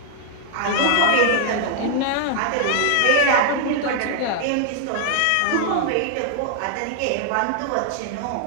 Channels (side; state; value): both; different; correlation 0.00